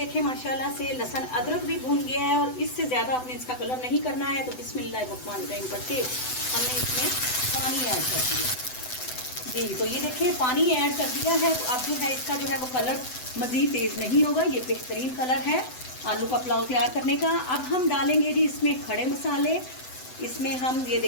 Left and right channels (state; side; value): late; right; 7.9 ms